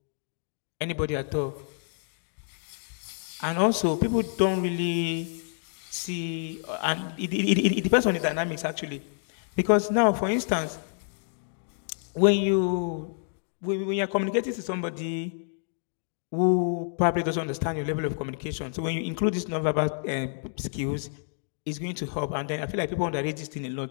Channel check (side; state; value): right; silent; digital silence